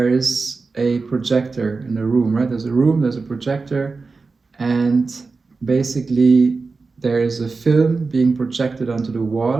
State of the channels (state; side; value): quieter; left; 4.2 dB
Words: is a projector in a room, right? There's a room, there's a projector, and basically there is a film being projected onto the